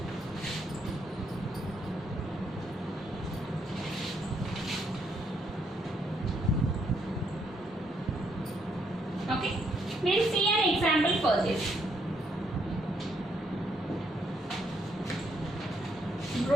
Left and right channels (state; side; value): normal; both; correlation 0.74